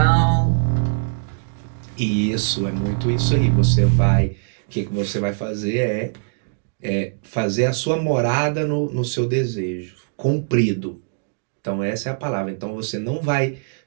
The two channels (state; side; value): silent; left; digital silence